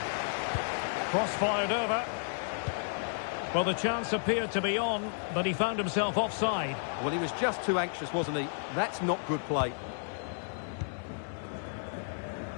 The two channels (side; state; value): right; silent; digital silence